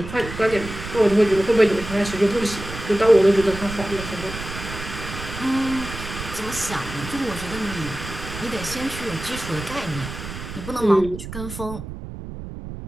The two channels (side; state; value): right; noise; rumble, 10 dB below the sound